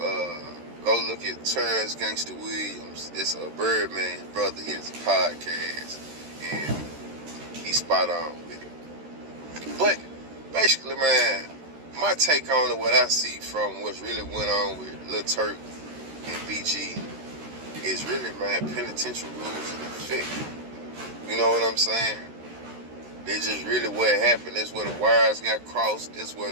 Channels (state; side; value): late; left; 13 ms